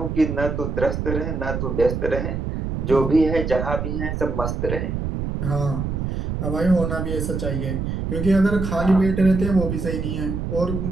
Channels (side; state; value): right; noise; rumble, 3 dB below the sound